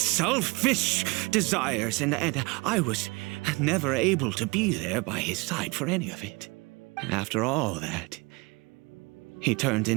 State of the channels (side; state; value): left; quieter; 26.4 dB